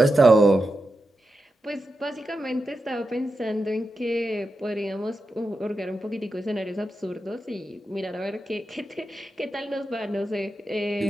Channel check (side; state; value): both; normal; correlation 0.89